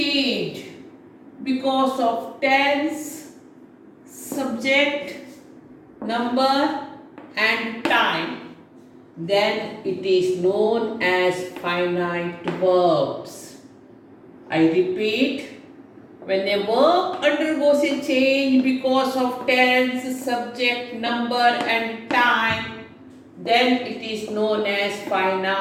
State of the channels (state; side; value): identical; both; correlation 1.00